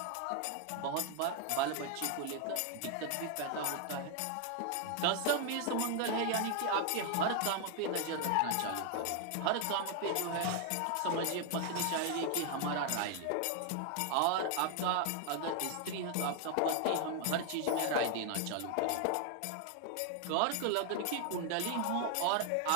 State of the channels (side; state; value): both; different; correlation 0.00